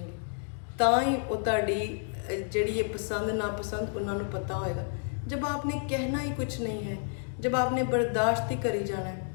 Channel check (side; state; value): right; silent; 57 dB below the other